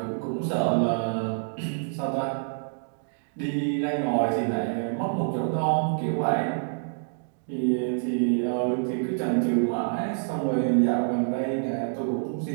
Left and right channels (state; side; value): silent; left; digital silence